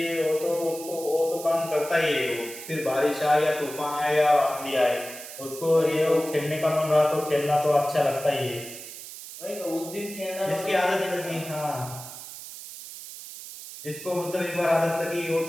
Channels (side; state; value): right; noise; hiss, 12 dB below the sound